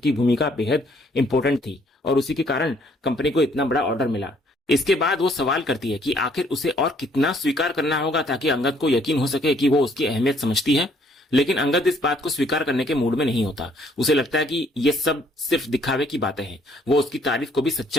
भूमिका बेहद इंपॉर्टेंट थी और उसी के कारण कंपनी को इतना बड़ा ऑर्डर मिला। इसके बाद वो सवाल करती है कि आखिर उसे और कितना स्वीकार करना होगा ताकि अंगद को यकीन हो सके कि वो उसकी अहमियत समझती है। लेकिन अंगद इस बात को स्वीकार करने के मूड में नहीं होता। उसे लगता है कि ये सब सिर्फ दिखावे की बातें हैं। वो उसकी तारीफ को भी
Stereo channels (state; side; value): normal; both; correlation 0.64